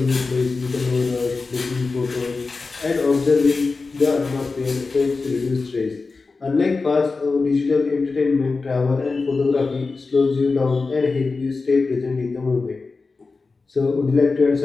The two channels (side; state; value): right; quieter; 4.1 dB